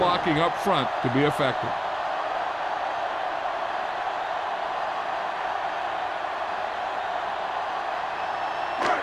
up front to be effective.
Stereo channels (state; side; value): identical; both; correlation 1.00